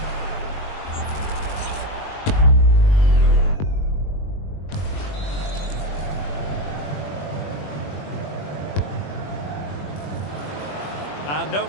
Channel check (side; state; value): right; late; 21 ms